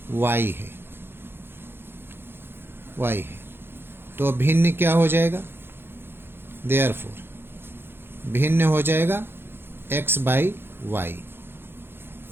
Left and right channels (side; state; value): left; late; 0.11 ms